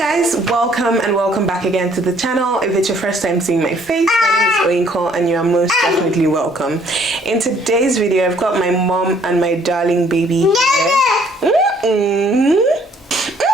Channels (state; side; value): normal; both; correlation 0.62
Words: welcome back again to the channel. If it's your first time seeing my face, my name is OMUGWO and you are most definitely welcome. In today's video, I've got my mom and my darling baby here.